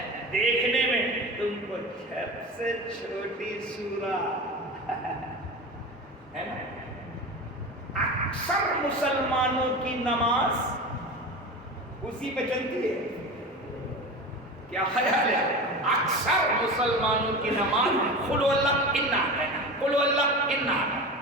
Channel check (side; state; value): both; normal; correlation 0.29